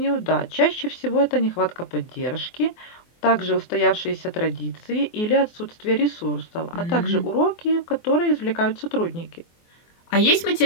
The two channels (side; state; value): right; late; 24 ms